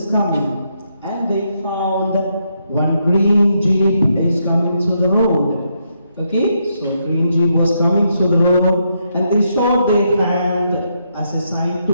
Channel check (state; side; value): inverted; both; correlation -0.79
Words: coming, and they found one green jeep is coming through the road. Okay, so green jeep was coming through the road, and they showed their hand as a sign